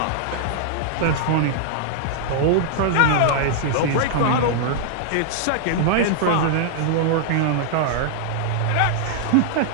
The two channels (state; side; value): different; both; correlation -0.01